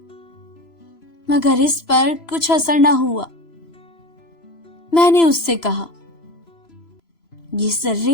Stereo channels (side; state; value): right; late; 3.0 ms